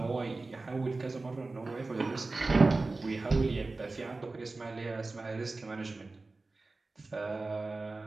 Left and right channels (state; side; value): quieter; left; 3.4 dB